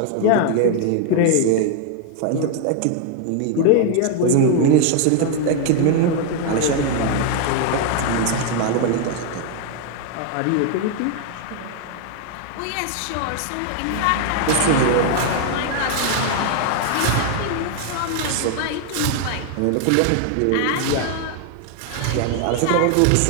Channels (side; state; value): both; different; correlation 0.00